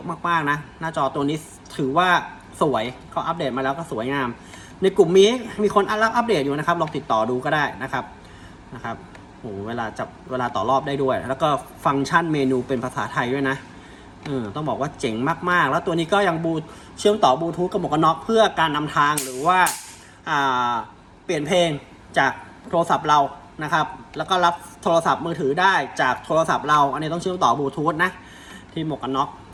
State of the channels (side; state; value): both; identical; correlation 1.00